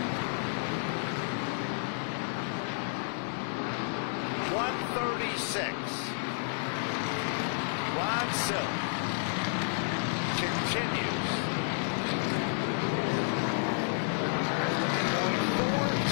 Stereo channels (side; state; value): right; silent; digital silence